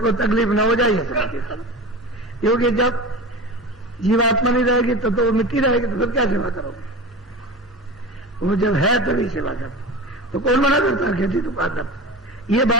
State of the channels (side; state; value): both; normal; correlation 0.31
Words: तकलीफ न हो जाए ये समझ के करो। क्योंकि जब जीवात्मा नहीं रहेगी तो वो मिट्टी रहेगी, तो फिर क्या सेवा करोगे? वो जब है तभी सेवा करो। तो कौन मना करता है खेती तो पाकर? ये